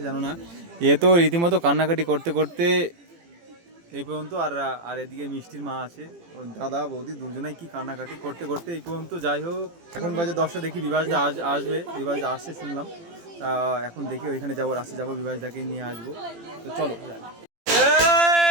জানো না। এ তো রীতিমতো কান্নাকাটি করতে করতে এই পর্যন্ত। আর আর এদিকে মিষ্টির মা আছে, ওই দাদা বৌদি দুজনেই কি কান্নাকাটি করতে করতে এই পর্যন্ত। যাই হোক, এখন বাজে 10টা, দেখি বিভাসদা আসবে, বিভাসদা আসছে শুনলাম। এখন দেখি ওইখানে যাবো, রাস্তায় যাবো, বিভাসদাকে নিয়ে আসবো। তো চলো যাই।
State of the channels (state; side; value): late; left; 18 ms